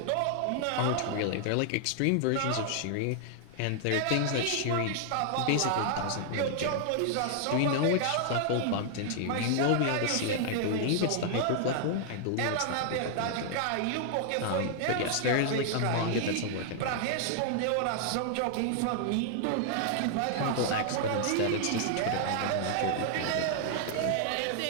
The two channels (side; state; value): both; different; correlation -0.01